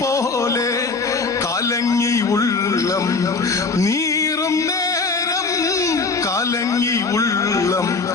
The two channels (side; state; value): right; quieter; 4.2 dB